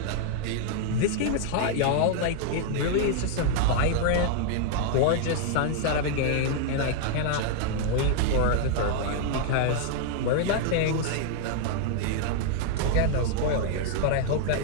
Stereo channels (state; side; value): different; both; correlation -0.01